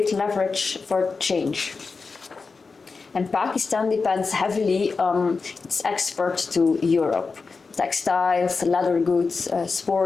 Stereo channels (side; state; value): right; quieter; 4.5 dB